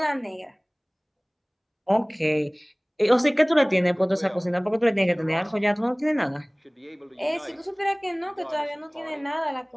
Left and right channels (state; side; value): identical; both; correlation 1.00